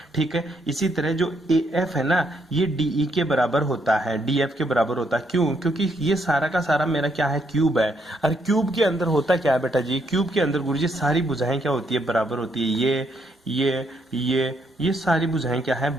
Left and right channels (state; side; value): normal; both; correlation 0.74